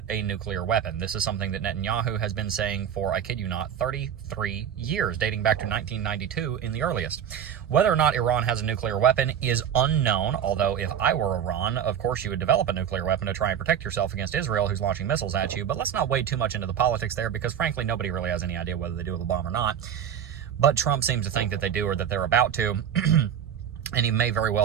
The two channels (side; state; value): left; quieter; 9.0 dB